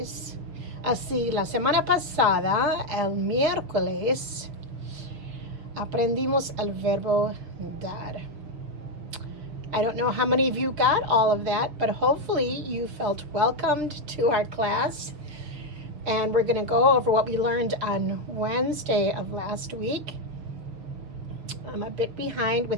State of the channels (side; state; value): left; late; 6.4 ms